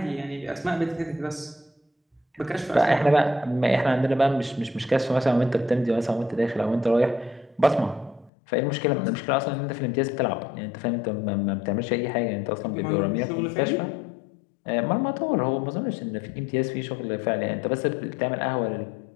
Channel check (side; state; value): right; drops out; at 8.3 s